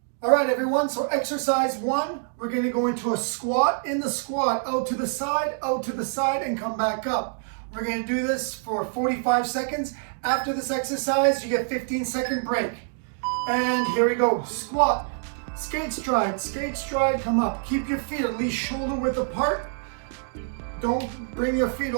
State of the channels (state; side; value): silent; left; digital silence